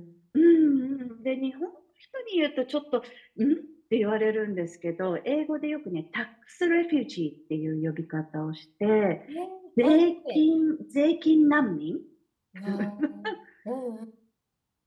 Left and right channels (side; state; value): both; identical; correlation 1.00